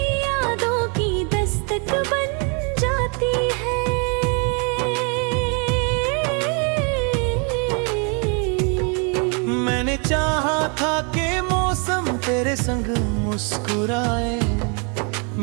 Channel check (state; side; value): quieter; left; 36.0 dB